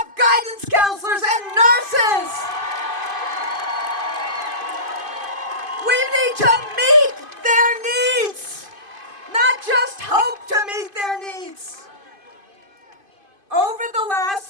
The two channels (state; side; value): late; left; 2.5 ms